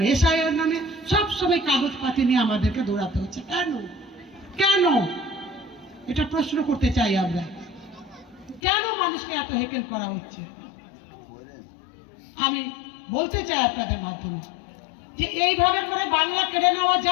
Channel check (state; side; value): drops out; right; at 8.6 s